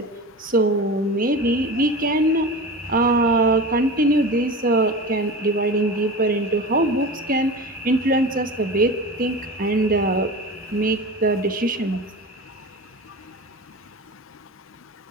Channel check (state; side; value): normal; both; correlation 0.31